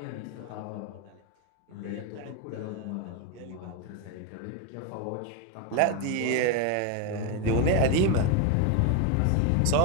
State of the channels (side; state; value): both; different; correlation 0.02